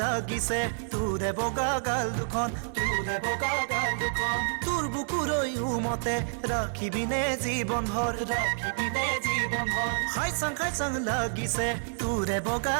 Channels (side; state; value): left; silent; 59 dB below the other